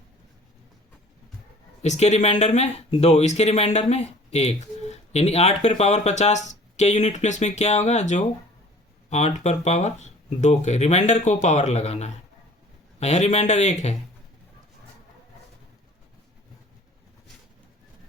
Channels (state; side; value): normal; both; correlation 0.49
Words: इसके रिमाइंडर में 2, इसके रिमाइंडर में 1, यानी 8 पर पावर 50 के यूनिट प्लेस में क्या होगा, जो 8 पर पावर 2 के रिमाइंडर को पावर लगाना है। यहाँ रिमाइंडर 1 है,